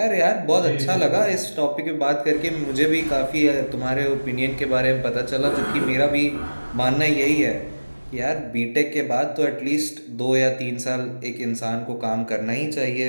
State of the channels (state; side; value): inverted; both; correlation -1.00